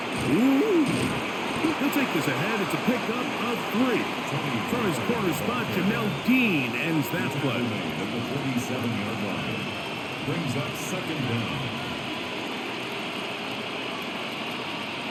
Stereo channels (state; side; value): identical; both; correlation 1.00